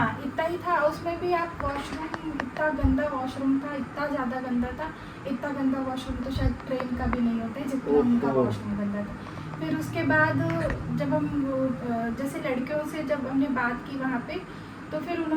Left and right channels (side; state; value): both; identical; correlation 1.00